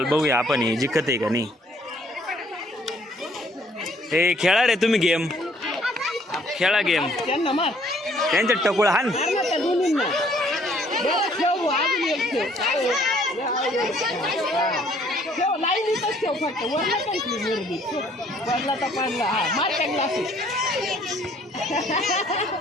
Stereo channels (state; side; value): normal; both; correlation 0.62